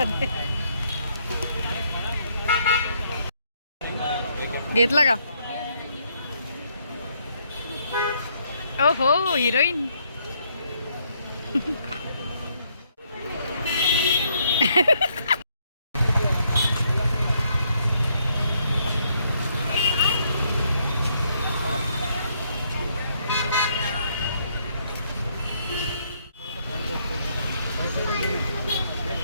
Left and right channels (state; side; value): inverted; both; correlation -0.71